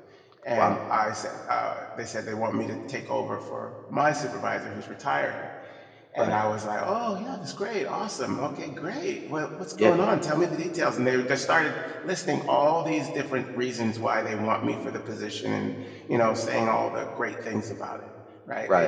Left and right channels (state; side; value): identical; both; correlation 1.00